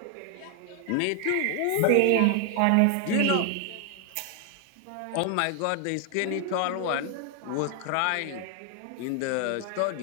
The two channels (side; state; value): both; different; correlation 0.00